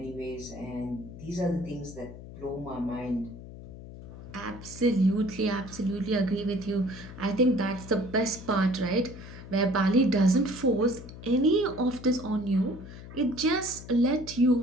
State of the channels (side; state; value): left; noise; hum, 14 dB below the sound